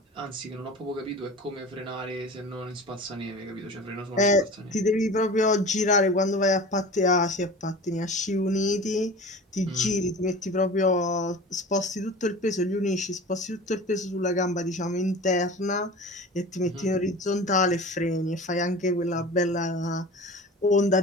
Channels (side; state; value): both; normal; correlation 0.37